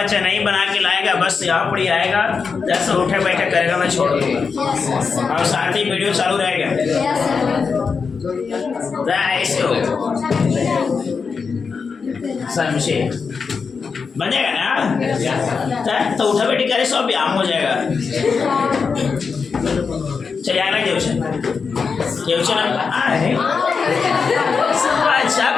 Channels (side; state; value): right; quieter; 5.3 dB